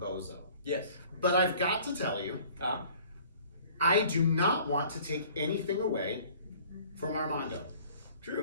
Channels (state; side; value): inverted; both; correlation -0.51